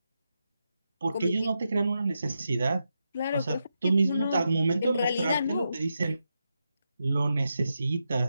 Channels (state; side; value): inverted; both; correlation -0.86